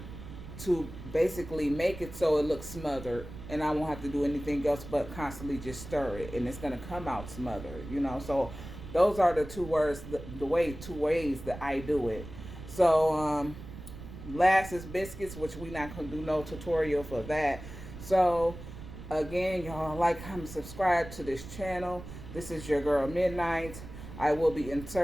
to basically make it so it looks smothered, and I won't have to do anything else but constantly just stir it, and it's gonna come out smothered, you know. So those are the two ways that I do it. So last is biscuits, which we're not gonna do no tutorial for that. So again, y'all, like, comment, subscribe to this channel. This is your girl Midnight. I will be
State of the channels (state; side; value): noise; right; rumble, 12 dB below the sound